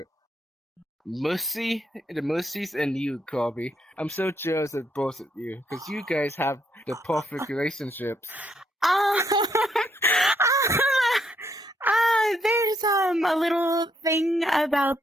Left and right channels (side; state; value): both; normal; correlation 0.74